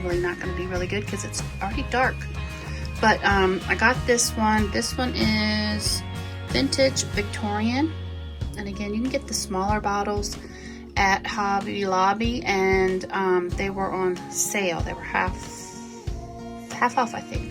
not going to be really good because it's already dark. But I got this one. This one is Vintage Victorian, and again, you can get the smaller bottles at Hobby Lobby, and they were on sale. They were half off, I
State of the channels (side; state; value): both; identical; correlation 1.00